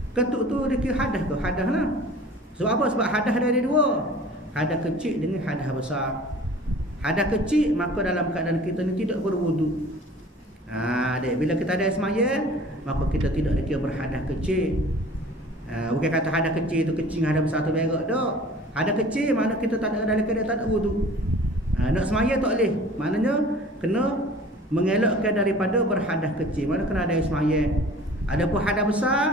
Ketuk tu dia hadas ke? Hadas lah. Sebab apa? Sebab hadas ada dua, hadas kecil dengan hadas besar. Hadas kecil, maka dalam keadaan kita ni tidak berwudu. Bila kita ada semaya, maka kita tidak dikira berhadas kecil. Bukan kata hadas kecil tu kecing, hadas besar tu berok dak. Hadas kecil mana kita tak ada dalam keadaan tak ada wudu. Nak semaya tak boleh. Maknanya kena mengelakkan daripada berhadas kecil. Mana kena ada semaya. Adapun hadas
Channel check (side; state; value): both; normal; correlation 0.46